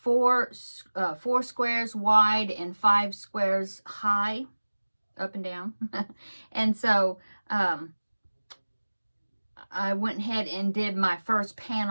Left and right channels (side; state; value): both; inverted; correlation -1.00